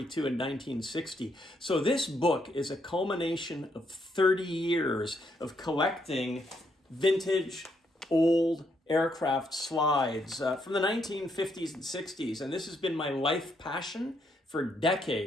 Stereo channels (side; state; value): both; normal; correlation 0.75